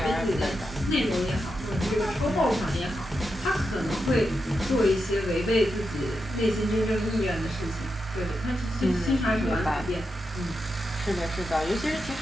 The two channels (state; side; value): normal; both; correlation 0.86